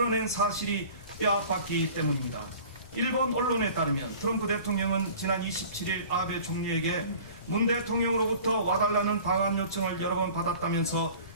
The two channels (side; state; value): both; inverted; correlation -0.44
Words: 사실이 뼈아팠기 때문입니다. 일본 언론에 따르면 트럼프 대통령은 지난 27일 아베 총리에게 문 대통령으로부터 와달라는 방한 요청을 여러 번 받았다면서